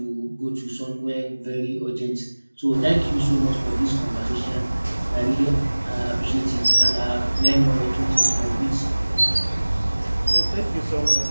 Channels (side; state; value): both; inverted; correlation -1.00